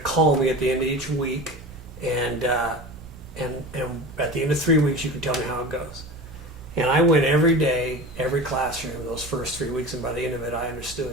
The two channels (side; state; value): both; normal; correlation 0.32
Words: call me at the end of each week, and at the end of 3 weeks, you can tell me how it goes." And I went every day, every classroom, those first 3 weeks, and by the end of it, I understood.